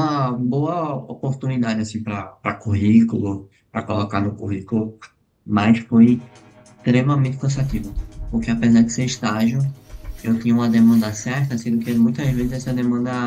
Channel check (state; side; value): identical; both; correlation 1.00